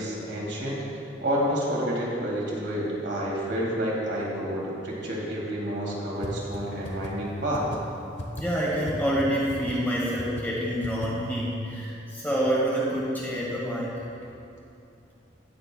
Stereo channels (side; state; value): both; normal; correlation 0.49